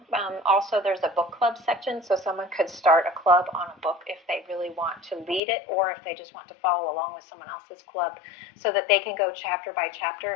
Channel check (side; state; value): right; drops out; at 5.4 s